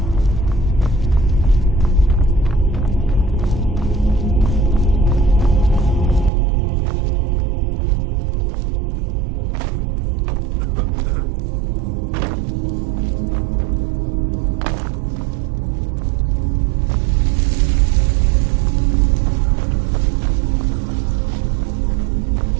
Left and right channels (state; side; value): drops out; left; at 6.3 s